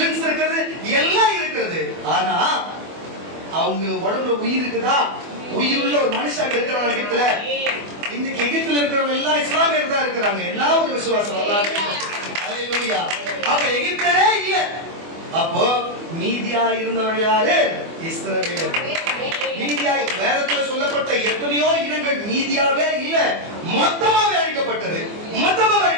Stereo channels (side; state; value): left; late; 24 ms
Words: இருக்கிறது, எல்லாம் இருக்கிறது. ஆனா அவங்க உடம்புல உயிர் இருக்குதா? உயிருள்ள ஒரு மனுஷன் இருக்கிறாங்க எகிப்துல. இன்னைக்கு எகிப்துல இருக்கிறவங்க எல்லாம் இஸ்லாமியர் தான் இருக்கிறாங்க. என்ன ஒரு விசுவாசம். அல்லேலூயா. அப்ப எகிப்தரே இல்ல. அப்போ மீதியா இருந்தவர்கள் யாரு? இஸ்ரவேலர்கள். மீதியா வேதத்துல சொல்லப்பட்ட எத்தனையோ இனங்கள் மீதியாவே இல்ல, மொத்தமாவே அழிக்கப்பட்டது.